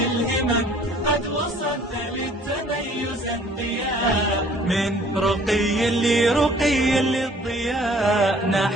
قد وصلت للتميز انقياء. من رقي لرقي للضياء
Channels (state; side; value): normal; both; correlation 0.55